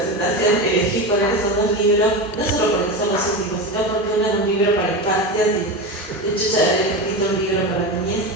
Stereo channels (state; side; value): normal; both; correlation 0.21